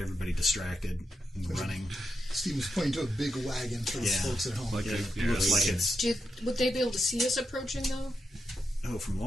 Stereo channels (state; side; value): normal; both; correlation 0.86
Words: everybody distracted and running. Steven's pointing to a big wagon for the Yeah. folks at home. Like Yeah, a, it yeah, looks like we it's Would they be able to see us approaching, though? from